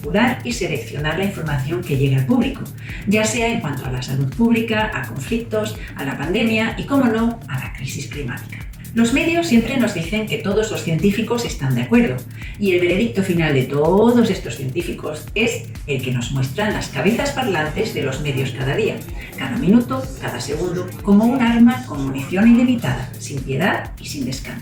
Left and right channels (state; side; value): identical; both; correlation 1.00